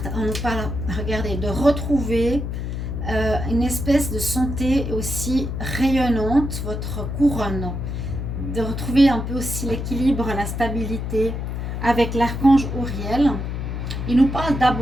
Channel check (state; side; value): noise; left; hum, 4 dB below the sound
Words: On nous parle, regardez, de retrouver une espèce de santé aussi rayonnante, votre couronne. De retrouver un peu aussi l'équilibre, la stabilité avec l'archange Uriel. Il nous parle